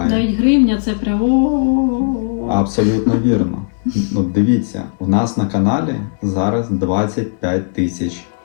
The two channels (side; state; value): right; silent; digital silence